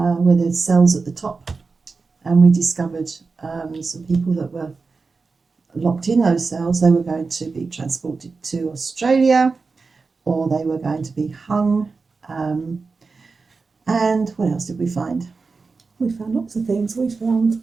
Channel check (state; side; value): quieter; left; 4.4 dB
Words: there's cells at the top, and we discovered some people that were locked in those cells. They were going to be transported to Australia, or they were going to be hung. And what else did we find? We found lots of things. We found